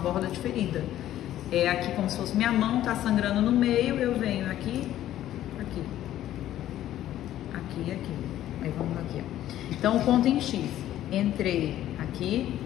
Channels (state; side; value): quieter; right; 12.8 dB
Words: de ferida. É aqui como se fosse minha mão, tá sangrando no meio, eu venho aqui, aqui, aqui, aqui. Aí vamos aqui, ó. Então, o ponto em X. Entrei aqui,